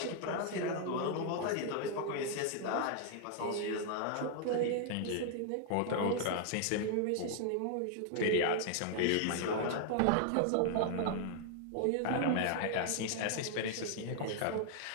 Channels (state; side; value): different; both; correlation 0.00